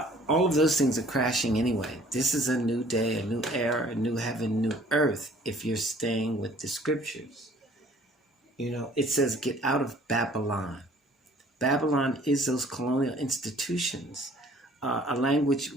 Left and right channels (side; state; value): both; normal; correlation 0.54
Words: All of those things are crashing anyway. This is a new day, a new era, a new heaven, new earth, if you're staying with the scriptures. It says, get out of Babylon. Babylon is those colonial institutions, a language